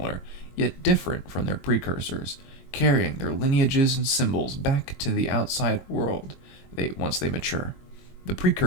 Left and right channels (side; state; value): right; late; 22 ms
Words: yet different from their precursors, carrying their lineages and symbols back to the outside world once they mature. The